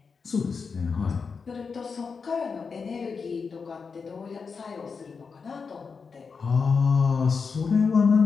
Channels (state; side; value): quieter; right; 5.3 dB